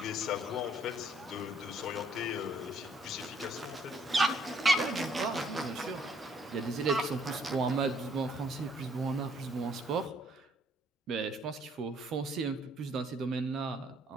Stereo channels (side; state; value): both; normal; correlation 0.65